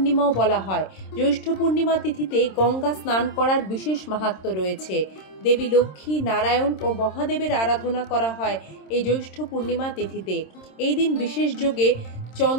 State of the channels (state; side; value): late; right; 26 ms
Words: বলা হয়। জ্যৈষ্ঠ পূর্ণিমা তিথিতে গঙ্গা স্নান করার বিশেষ মাহাত্ম্য রয়েছে। দেবী লক্ষ্মী, নারায়ণ ও মহাদেবের আরাধনা করা হয় এই জ্যৈষ্ঠ পূর্ণিমা তিথিতে। এই দিন বিশেষ যোগে